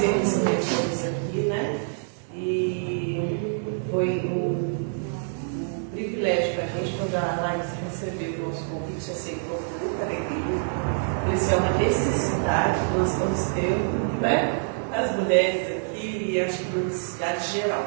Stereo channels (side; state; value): left; silent; digital silence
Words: receber todos aqui, né? E foi um privilégio para a gente quando a Laís recebeu o nosso convite, aceitou com muita alegria. Isso é uma necessidade que nós estamos tendo, né? As mulheres aqui e acho que uma necessidade geral,